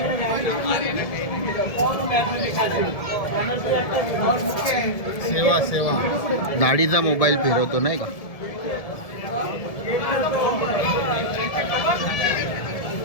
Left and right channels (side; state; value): right; late; 1.7 ms